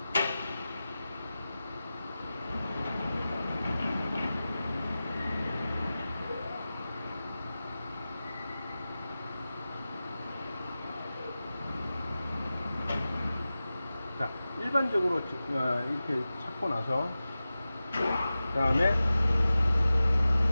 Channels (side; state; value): both; inverted; correlation -0.95